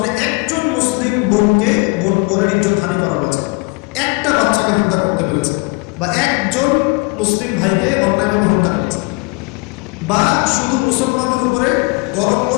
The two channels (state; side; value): quieter; right; 27.1 dB